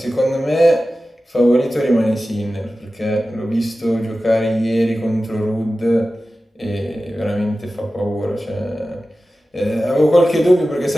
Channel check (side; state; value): both; normal; correlation 0.95